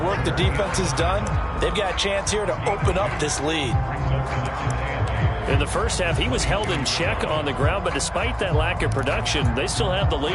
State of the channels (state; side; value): identical; both; correlation 1.00